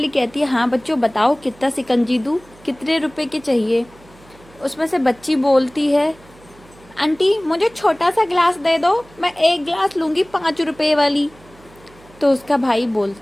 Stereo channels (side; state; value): right; noise; hum, 25 dB below the sound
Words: कहती है, हाँ बच्चों बताओ कितना शिकंजी दूँ, कितने रुपए के चाहिए। उसमें से बच्ची बोलती है, आंटी मुझे छोटा सा गिलास दे दो, मैं एक गिलास लूँगी 5 रुपए वाली। तो उसका भाई